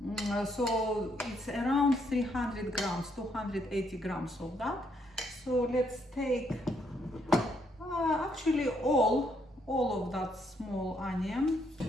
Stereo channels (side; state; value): both; normal; correlation 0.73